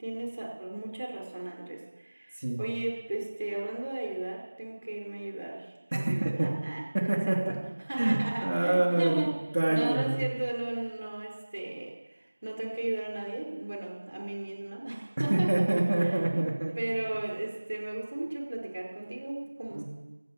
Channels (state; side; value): inverted; both; correlation -1.00